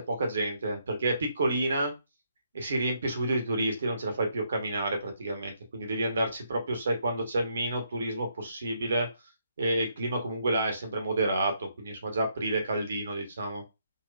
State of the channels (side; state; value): both; inverted; correlation -0.75